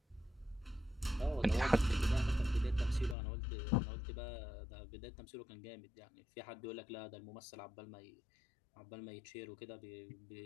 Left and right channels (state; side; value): drops out; right; at 3.2 s